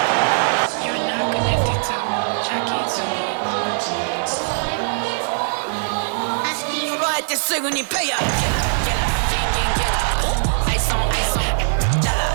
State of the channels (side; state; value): left; silent; digital silence